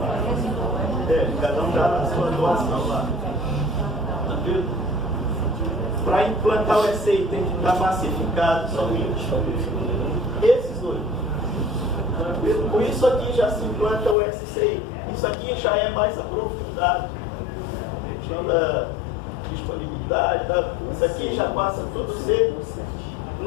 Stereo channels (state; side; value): drops out; right; at 14.2 s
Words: Cada um dá a sua doação lá. Para implantar o SCI tem que estar massificado somente. Esses 8. Com isso aqui já se implanta o SCI. Isso aqui já é mais aprofundado. A questão da disponibilidade, isso aqui já passa tudo a ser